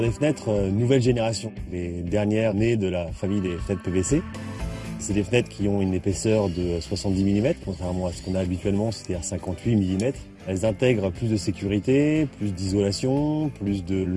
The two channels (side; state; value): both; identical; correlation 1.00